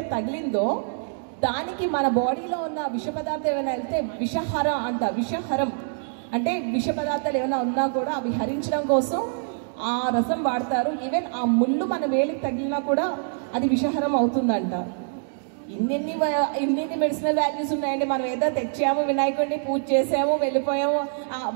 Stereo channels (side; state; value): left; silent; digital silence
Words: తగిలిందో దానికి మన బాడీలో ఉన్న విష పదార్థం ఏమైనా వెళ్తే విషహరం అంట. విషహరం అంటే విష పదార్థాలు ఏమైనా ఉన్నా కూడా అవి హరించడం కోసం ఆ రసం వాడతారు. ఈవెన్ ఆ ముళ్ళు మన వేలికి తగిలినా కూడా అది విషహరం అవుతుందంట. ఇన్ని మెడిసినల్ వాల్యూస్ ఉన్నాయండి. మనం ఏదో తెచ్చాము, వినాయకుడిని పూజ చేసాము, వెళ్ళిపోయాము,